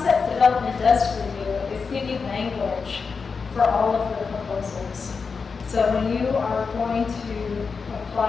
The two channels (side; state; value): right; quieter; 5.2 dB